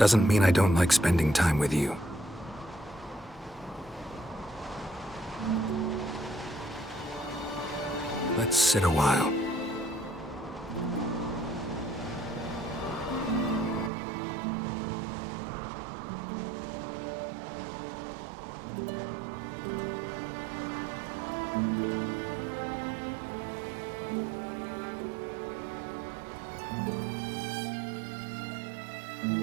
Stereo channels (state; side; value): drops out; left; at 13.9 s